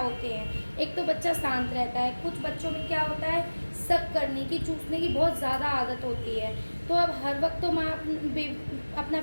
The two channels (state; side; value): inverted; both; correlation -1.00